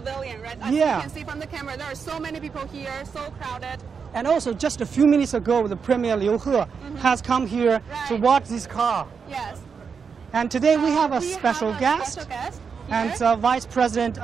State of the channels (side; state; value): left; quieter; 6.0 dB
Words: right? As you can see from the camera, there are so many people here, so crowded. And also, just a few minutes ago, the Premier Liu He has come here to watch this car. Yes. And today we have a special guest. And Vice President